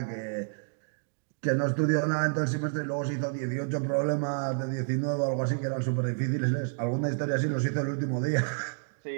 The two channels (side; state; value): left; silent; digital silence